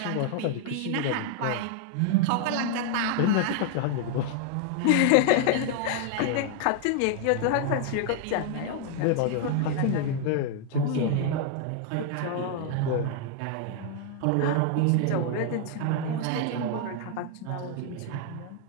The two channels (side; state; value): both; different; correlation 0.00